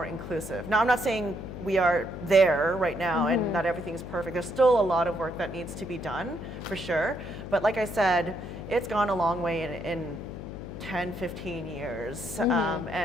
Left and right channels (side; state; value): left; noise; hum, 10 dB below the sound